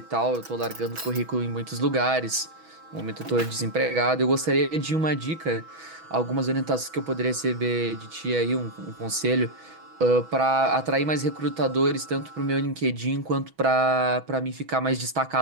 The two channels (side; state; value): left; late; 6.2 ms